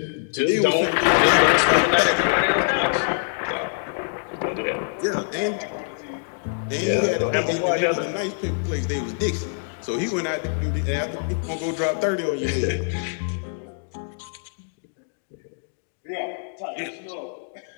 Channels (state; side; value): silent; right; digital silence